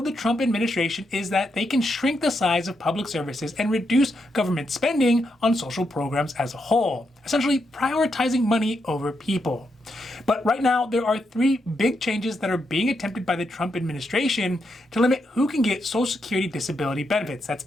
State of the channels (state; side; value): normal; both; correlation 0.82